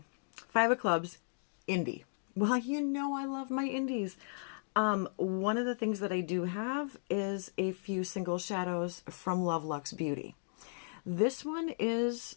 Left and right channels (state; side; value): silent; right; digital silence